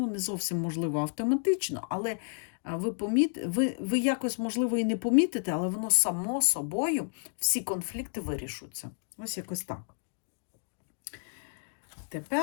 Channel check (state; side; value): silent; right; 57 dB below the other